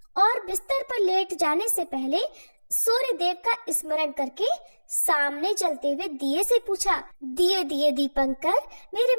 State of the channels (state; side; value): inverted; both; correlation -1.00